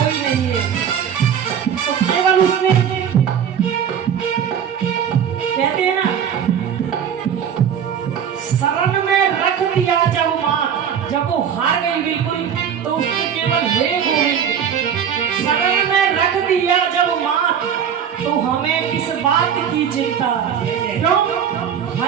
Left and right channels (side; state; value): left; quieter; 8.3 dB